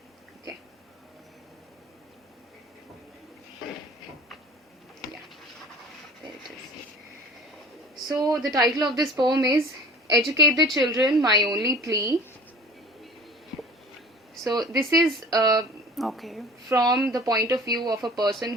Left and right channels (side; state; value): both; normal; correlation 0.44